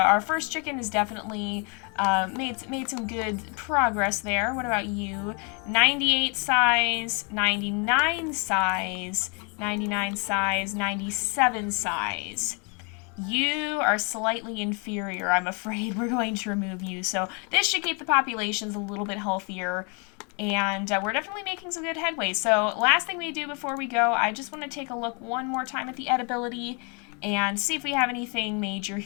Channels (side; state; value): right; quieter; 34.6 dB